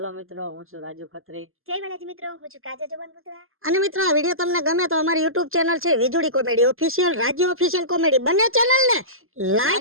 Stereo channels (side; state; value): left; late; 0.61 ms